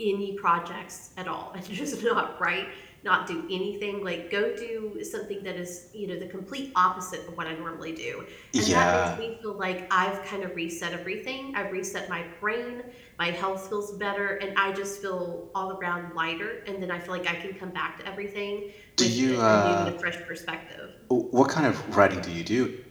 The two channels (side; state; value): both; identical; correlation 1.00